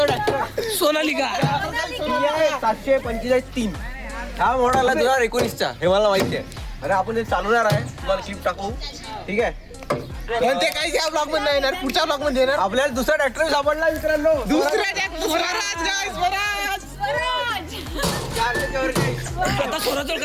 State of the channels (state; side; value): identical; both; correlation 1.00